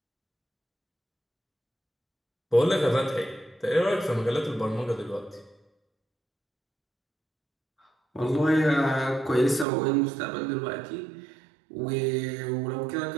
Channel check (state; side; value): drops out; left; at 9.7 s